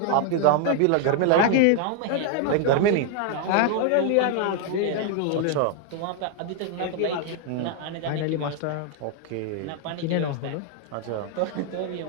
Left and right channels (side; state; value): both; different; correlation 0.00